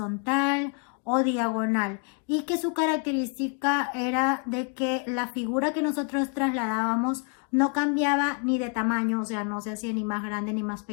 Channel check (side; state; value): right; quieter; 38.5 dB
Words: o diagonal y que su característica era de que la figura que nosotros trasladábamos no cambiaba ni de tamaño, o sea, no se hacía ni más grande ni más